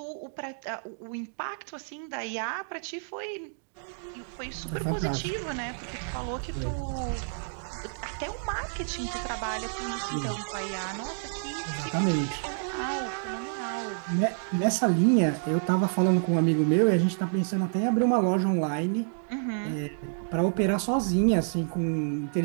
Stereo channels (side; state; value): left; silent; digital silence